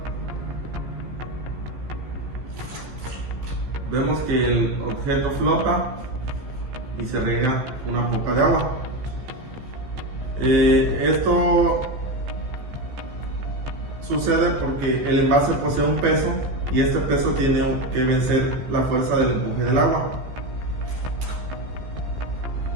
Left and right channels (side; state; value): left; late; 14 ms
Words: Vemos que el objeto flota y se riega una poca de agua. Esto sucede porque el envase posee un peso y este peso tiene que vencer la fuerza del empuje del agua.